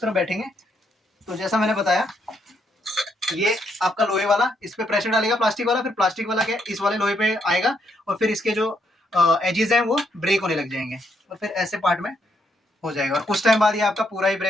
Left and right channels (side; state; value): both; normal; correlation 0.76